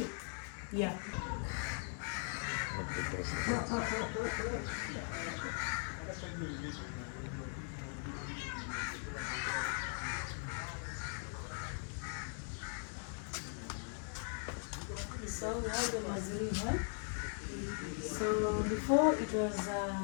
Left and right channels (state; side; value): silent; right; 51 dB below the other